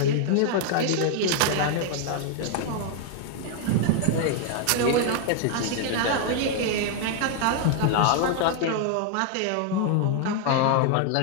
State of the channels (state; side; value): different; both; correlation 0.00